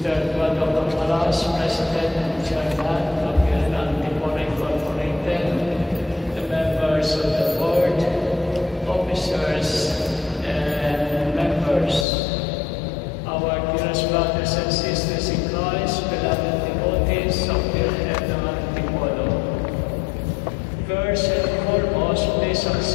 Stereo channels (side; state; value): right; drops out; at 12.1 s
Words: Eduardo Cormaras, President and Chairman of the Antipolo Incorporated, the members of the board, officers, and members, our dearest brothers and sisters in Christ, beloved devotees of the Head Antipolo. First and foremost, please